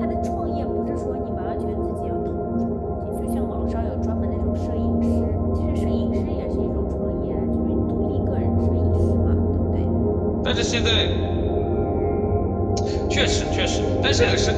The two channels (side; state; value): both; identical; correlation 1.00